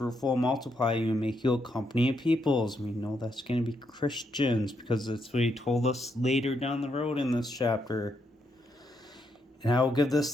multiply you, and make you a company of peoples. We know that's going to be Christians. Because that's what he told us later down the road in this chapter. And I will give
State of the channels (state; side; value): normal; both; correlation 0.78